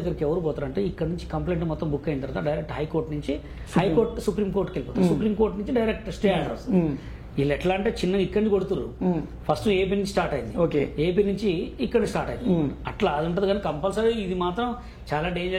ఎవరు పోతారు అంటే, ఇక్కడ నుంచి కంప్లైంట్ మొత్తం బుక్ అయిన తర్వాత డైరెక్ట్ హైకోర్టు నుంచి, హైకోర్టు సుప్రీంకోర్టుకి వెళ్ళిపోతారు, సుప్రీంకోర్టు నుంచి డైరెక్ట్ స్టే ఆర్డర్ వస్తుంది. వీళ్ళు ఎట్లా అంటే చిన్నగా ఇక్కడి నుంచి కొడుతున్నారు, ఫస్ట్ ఏపీ నుంచి స్టార్ట్ అయింది, ఏపీ నుంచి ఇక్కడ స్టార్ట్ అయింది, అట్లా అది ఉంటుంది. కానీ కంపల్సరీ ఇది మాత్రం చాలా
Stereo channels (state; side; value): identical; both; correlation 1.00